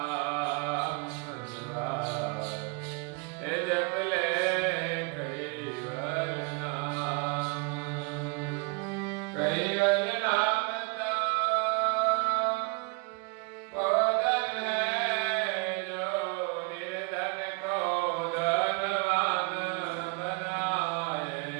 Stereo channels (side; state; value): left; quieter; 31.3 dB